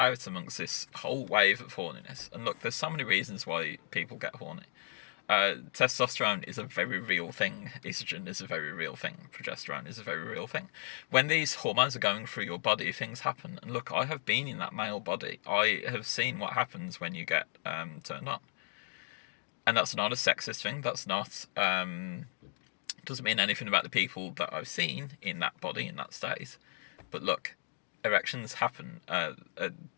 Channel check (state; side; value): silent; right; digital silence